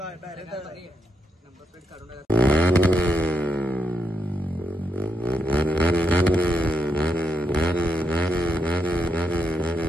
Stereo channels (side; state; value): both; normal; correlation 0.82